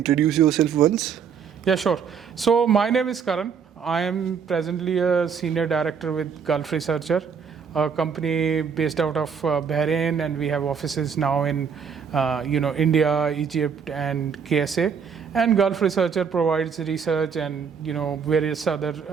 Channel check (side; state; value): left; quieter; 6.7 dB